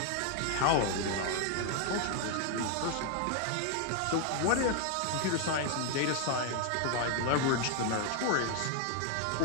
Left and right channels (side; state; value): both; different; correlation 0.00